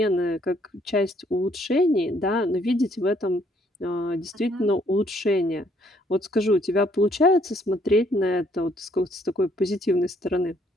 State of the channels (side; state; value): both; normal; correlation 0.66